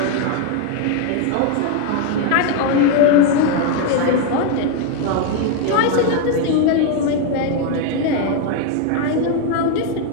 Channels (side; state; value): both; different; correlation 0.01